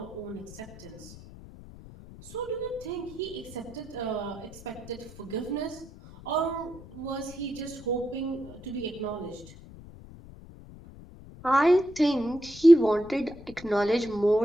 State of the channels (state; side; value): noise; left; rumble, 18 dB below the sound